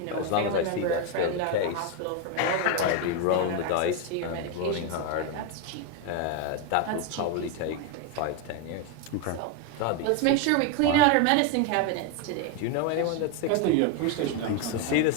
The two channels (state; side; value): different; both; correlation 0.01